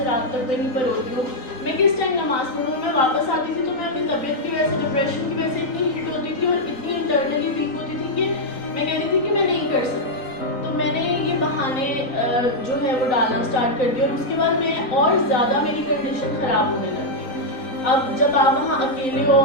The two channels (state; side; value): late; right; 3.9 ms